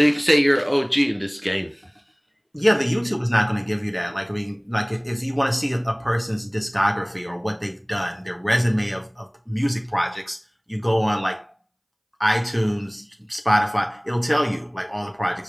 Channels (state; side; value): identical; both; correlation 1.00